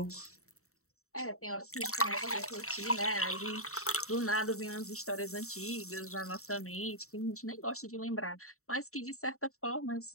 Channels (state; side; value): late; right; 0.64 ms